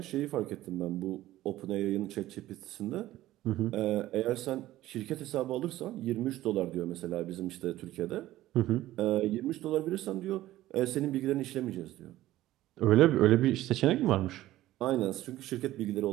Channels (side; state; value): left; quieter; 15.2 dB